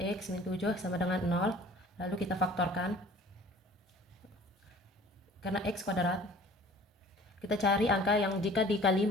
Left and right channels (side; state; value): both; normal; correlation 0.48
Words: min 7 sama dengan 0, lalu kita faktorkan. Karena x kuadrat, kita cari angka yang jika dikali